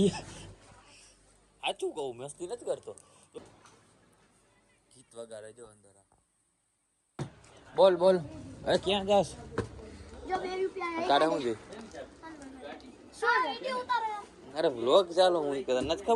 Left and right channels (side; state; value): both; identical; correlation 1.00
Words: સાચું કહું મસ્તી નથી કરતો ગીત વગાડે જો અંદર બોલ બોલ અરે ક્યાં જાસ જો 2 રૂપિયા કાઢે હું છે શું વિડિયો ઉતારે અરે વ્લોગ ચાલો હું કહેતા નથી